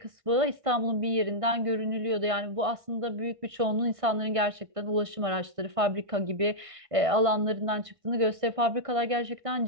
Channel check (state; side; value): late; left; 1.6 ms